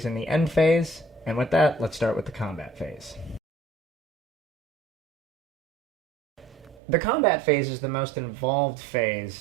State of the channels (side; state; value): left; drops out; at 6.8 s